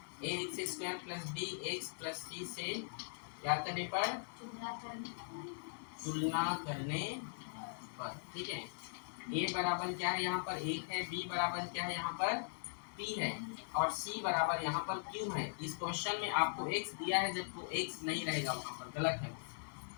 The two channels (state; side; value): silent; right; digital silence